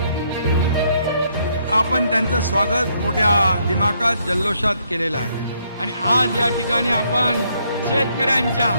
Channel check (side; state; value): both; inverted; correlation -0.72